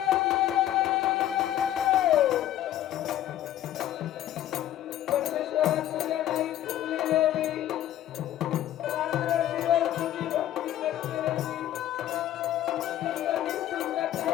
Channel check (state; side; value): quieter; right; 12.4 dB